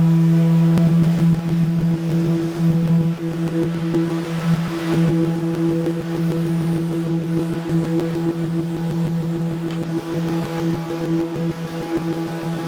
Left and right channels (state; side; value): identical; both; correlation 1.00